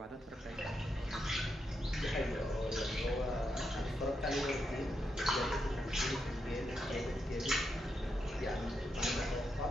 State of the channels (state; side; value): normal; both; correlation 0.83